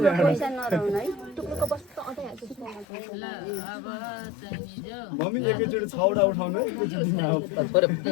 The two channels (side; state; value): right; drops out; at 2.9 s